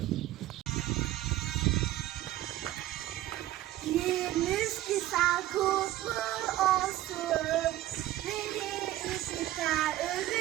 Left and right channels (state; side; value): quieter; left; 14.9 dB